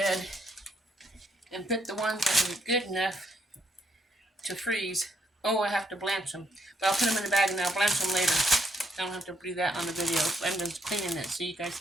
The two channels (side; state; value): both; normal; correlation 0.74